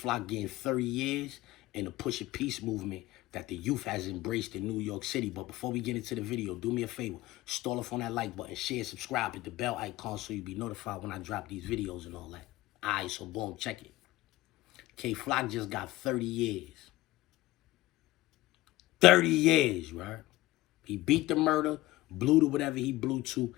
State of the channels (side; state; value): right; quieter; 17.6 dB